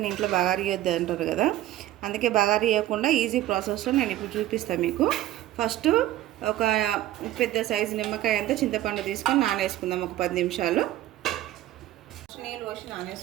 ఇంట్లో బగారి ఇవ్వద్దు అంటారు కదా, అందుకే బగారి ఇవ్వకుండా ఈజీ ప్రాసెస్లో నేను ఇప్పుడు చూపిస్తాను మీకు. ఫస్ట్ ఒక పెద్ద సైజు నిమ్మకాయ అంతా చింతపండు తీసుకొని నానేసుకుందాం ఒక 10 నిమిషాలు. నీళ్ళు పోసి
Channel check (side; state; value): left; quieter; 14.2 dB